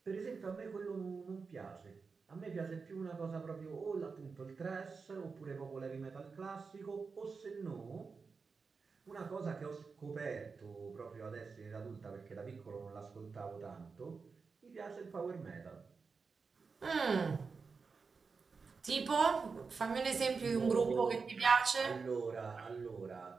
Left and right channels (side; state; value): left; quieter; 4.9 dB